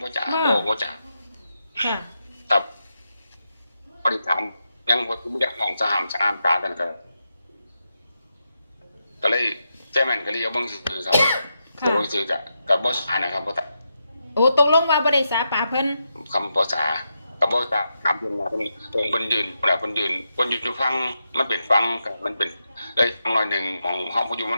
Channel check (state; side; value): inverted; both; correlation -0.86